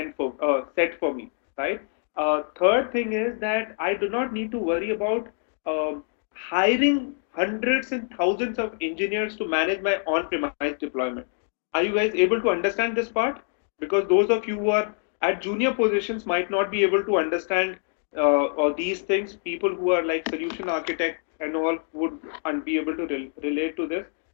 for me, right? Third thing is that I do not need to worry about hiring hundreds and thousands of engineers to manage my on-premise deployment. Are you guys able to understand this part? Because those of you who are at junior positions might not be able to understand or these things. People who are like solution architect and all would be able to relate to this.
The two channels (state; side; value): silent; right; 61 dB below the other